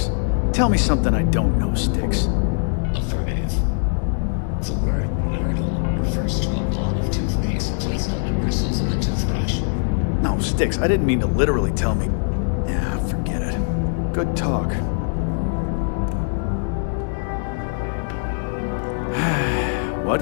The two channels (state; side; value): silent; right; 64 dB below the other